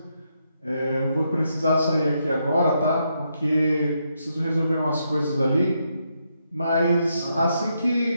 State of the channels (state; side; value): inverted; both; correlation -0.80